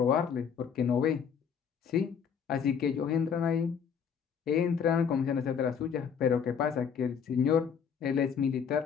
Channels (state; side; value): quieter; right; 7.1 dB